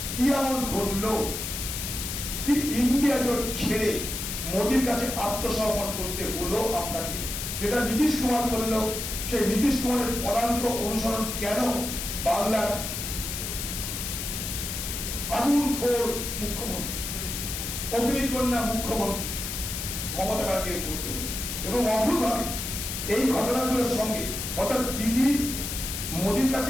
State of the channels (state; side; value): noise; left; hiss, 5 dB below the sound